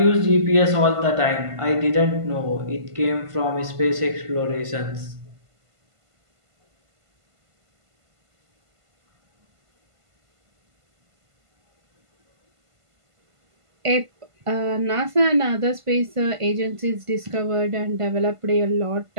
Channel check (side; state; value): left; late; 1.5 ms